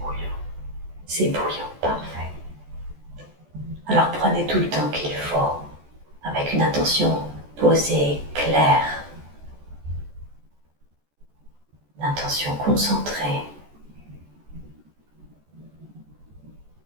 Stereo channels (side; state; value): left; late; 14 ms